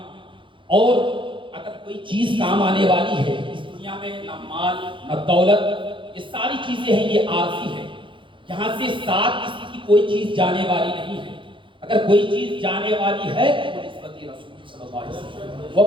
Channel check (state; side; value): late; left; 0.24 ms